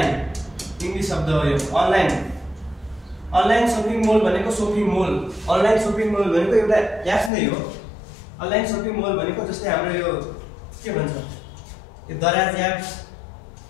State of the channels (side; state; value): right; drops out; at 7.3 s